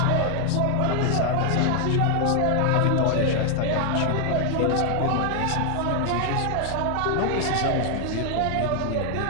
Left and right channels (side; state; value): both; different; correlation 0.00